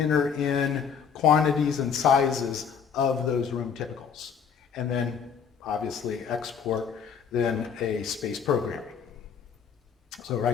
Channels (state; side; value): quieter; right; 6.9 dB